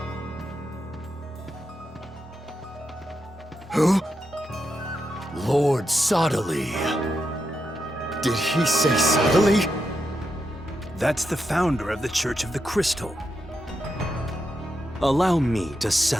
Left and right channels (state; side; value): normal; both; correlation 0.85